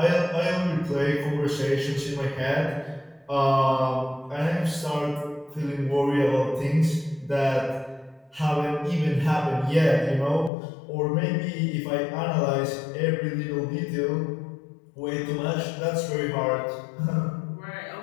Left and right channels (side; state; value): right; drops out; at 10.5 s